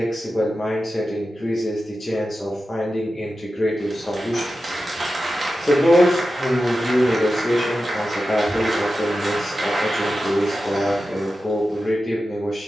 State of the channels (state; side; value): normal; both; correlation 0.92